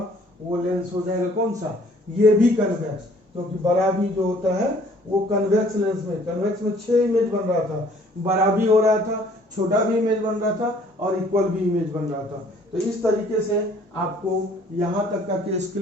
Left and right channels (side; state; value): both; normal; correlation 0.57